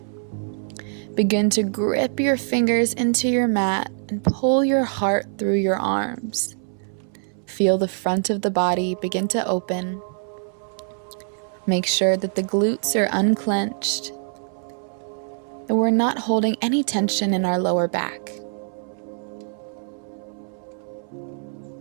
Begin to grip your fingers into your mat and pull your heart through your arms. Feel the front of the body begin to open. Make sure that the glutes are unclenched and we're not holding any tension in our lower back.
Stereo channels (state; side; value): silent; left; 63 dB below the other